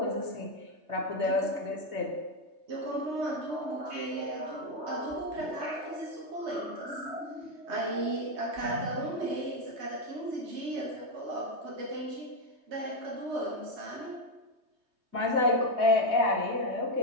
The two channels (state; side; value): late; left; 3.2 ms